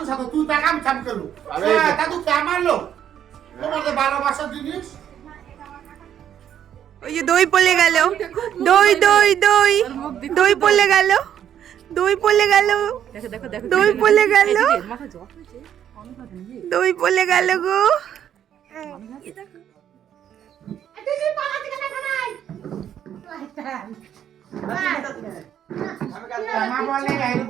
সাথে তুই টাকা আমি চাপ করলু দাদু কে মারলো তোমাদের ভালোবাসার জিনিস। ওই যে দই পড়ে গেল, দই দই দই দই পড়ে গেল, দই পড়ে গেল, দই পড়ে গেল, দই পড়ে গেল গো। মা বলে আইরে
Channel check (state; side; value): quieter; left; 9.8 dB